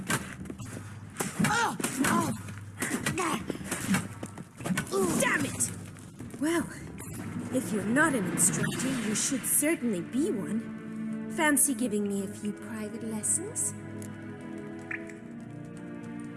Damn it! Well, if you're not an instructor, you should certainly be one. Fancy giving me a few private lessons?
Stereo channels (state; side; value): identical; both; correlation 1.00